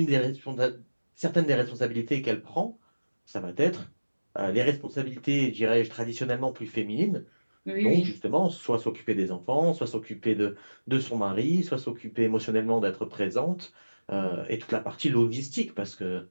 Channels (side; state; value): both; inverted; correlation -1.00